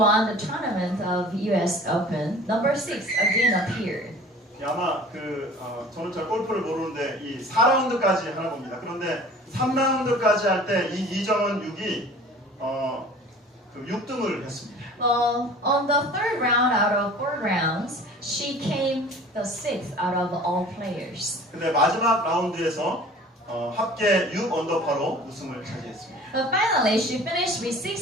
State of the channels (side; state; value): both; normal; correlation 0.45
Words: the tournament of US Open, number 6 again appeared. 아마 저는 잘 골프를 모르는데 이 4라운드까지 하나 봅니다. 그런데 3라운드까지 할 때 이 이정은 6이 6등을 했습니다. Well, on the third round out of 4 rounds, she came the 6th out of all players. 근데 마지막 라운드에서 합계 6 언더파로 우승을 차지했습니다. But finally, she finished with